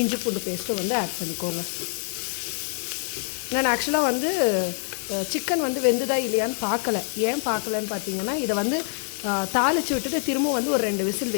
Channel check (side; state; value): right; silent; digital silence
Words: இஞ்சி பூண்டு பேஸ்ட்டும் வந்து ஆட் பண்ணிக்கோங்க. நான் ஆக்சுவலாக வந்து சிக்கன் வந்து வெந்துதா இல்லையான்னு பார்க்கல. ஏன் பார்க்கலன்னு பார்த்தீங்கன்னா இதை வந்து தாளித்து விட்டுட்டு திரும்ப வந்து ஒரு 2 விசில்